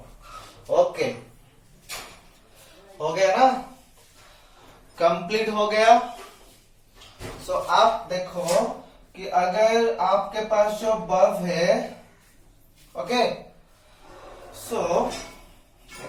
ओके, हो गया ना, कंप्लीट हो गया। सो आप देखो कि अगर आपके पास जो बल्ब है, ओके, सो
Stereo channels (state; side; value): identical; both; correlation 1.00